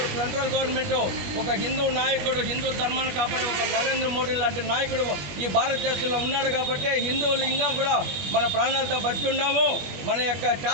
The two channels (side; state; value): left; late; 21 ms